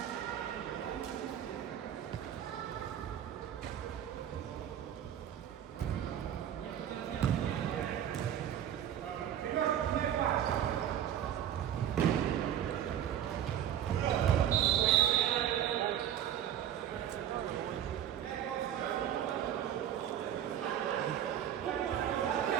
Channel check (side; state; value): left; quieter; 10.4 dB